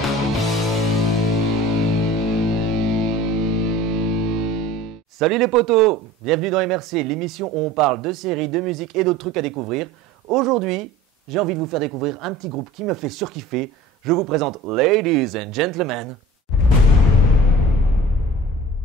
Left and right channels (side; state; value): both; normal; correlation 0.42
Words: Salut les potos, bienvenue dans MRC, l'émission où on parle de séries, de musique et d'autres trucs à découvrir. Aujourd'hui, j'ai envie de vous faire découvrir un petit groupe qui me fait surkiffer. Je vous présente Ladies and Gentlemen,